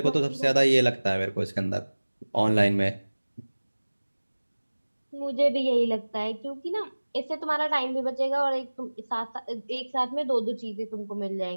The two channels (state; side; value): inverted; both; correlation -1.00